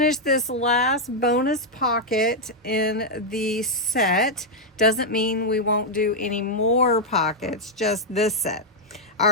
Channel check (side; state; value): both; normal; correlation -0.02